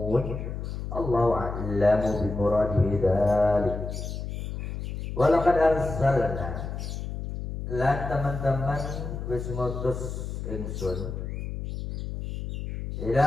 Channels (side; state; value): left; noise; hum, 5 dB below the sound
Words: الله أعلم بمراده ذلك. ولقد أرسلنا lan teman-teman wis ngutus ingsun